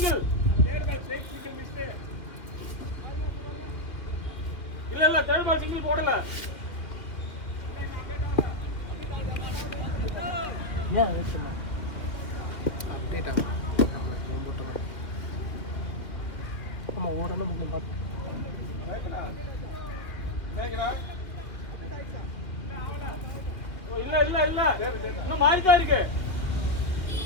ஏன் வெயிட் பண்ண அப்டேட் ஆகும் ஆமாம் ஓடணும் முக்கியம் பார்த்து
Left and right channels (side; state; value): right; late; 2.6 ms